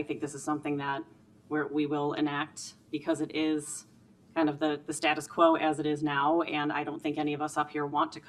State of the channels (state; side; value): identical; both; correlation 1.00